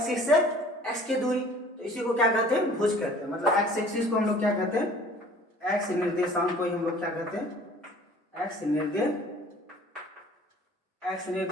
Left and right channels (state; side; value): normal; both; correlation 0.50